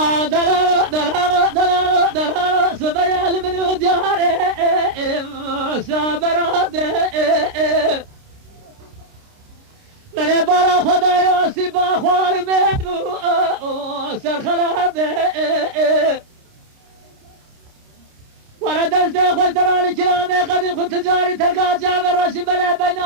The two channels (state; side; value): late; left; 29 ms